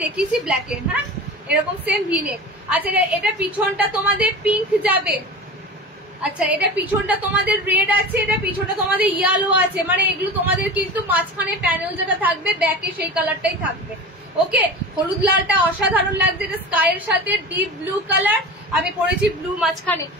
দেখিয়েছি ব্ল্যাকের। হ্যাঁ, এরকম সেম ভিনেক। আচ্ছা এটা পিছনটা তোমাদের পিঙ্ক যাবে। আচ্ছা এটা পিছনটা তোমাদের রেড আছে, এটা পিছনটা তোমাদের ইয়েলো আছে, মানে এগুলো তোমাদের কিন্তু মাঝখানে প্যানেল যেটা থাকবে ব্যাকে সেই কালারটাই থাকবে। ওকে, হলুদ লালটা অসাধারণ লাগছে, এটা স্কাইয়ের সাথে ডিপ ব্লু কালার, আমি পরেছি ব্লু মাঝখানে।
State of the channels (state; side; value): normal; both; correlation 0.31